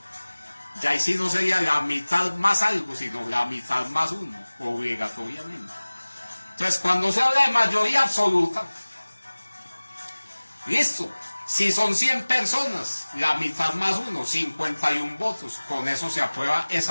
Ya ahí sí no sería la mitad más algo, sino la mitad más uno, obligatoriamente. Entonces, cuando se habla de mayoría absoluta, listo, si son 100 personas, la mitad más uno, 51 votos, con eso se aprueba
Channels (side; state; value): both; inverted; correlation -1.00